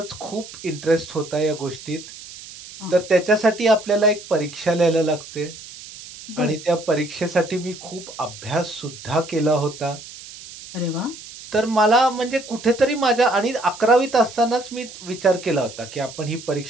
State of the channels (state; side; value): noise; right; hiss, 15 dB below the sound